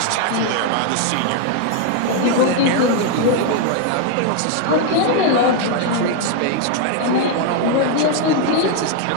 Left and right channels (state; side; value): different; both; correlation 0.01